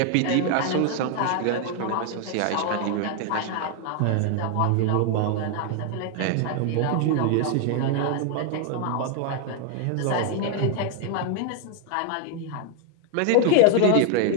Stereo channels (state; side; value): different; both; correlation 0.00